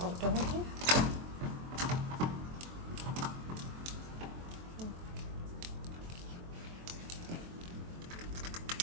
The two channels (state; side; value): late; left; 23 ms